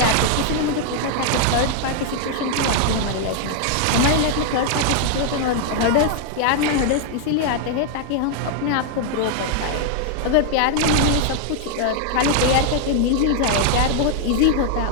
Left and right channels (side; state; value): both; different; correlation 0.00